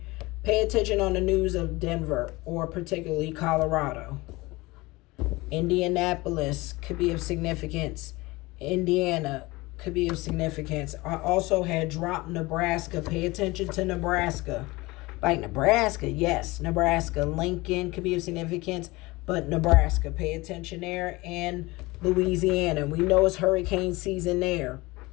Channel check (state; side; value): quieter; right; 21.9 dB